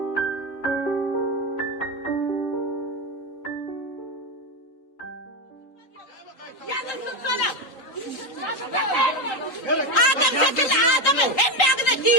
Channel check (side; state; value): right; late; 3.8 ms